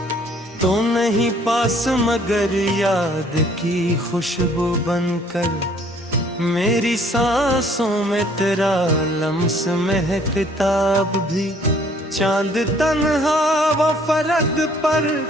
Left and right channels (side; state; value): both; normal; correlation 0.60